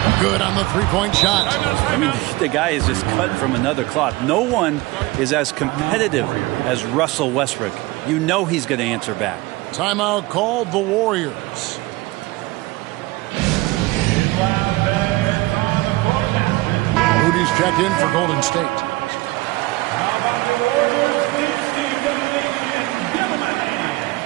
Good on the three-point shot. I mean, the guy is just cut from another cloth. No one is as competitive as Russell Westbrook. You know he's going to answer back. Timeout called the Warriors. Moody's checked in for Golden State.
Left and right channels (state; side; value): quieter; left; 20.7 dB